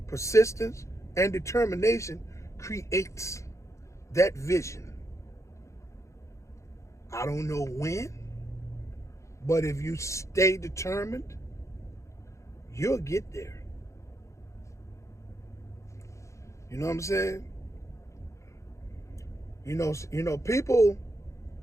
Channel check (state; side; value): late; right; 0.14 ms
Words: Persistence and determination creates that vision. I don't know when, but if you stay determined, you'll get there. You know what I'm saying? You know, people